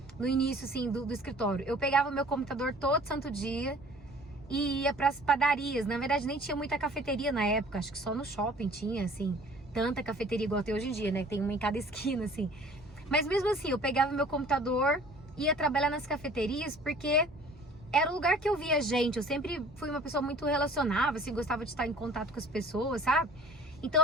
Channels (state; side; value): normal; both; correlation 0.49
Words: No início, assim, do escritório, eu pegava o meu computador todo santo dia e ia pras padarias. Na verdade, nem tinha muita cafeteria na época, acho que só no shopping tinha, assim, tanta cafeteria igual tem hoje em dia, né? Tem uma em cada esquina, assim. Mas mesmo assim, eu pegava meu computador, ia trabalhar nas cafeterias, porque era o lugar que eu via gente. Eu sempre fui uma pessoa muito relacionável, assim, gostava de estar em contato com as pessoas, sabe? Então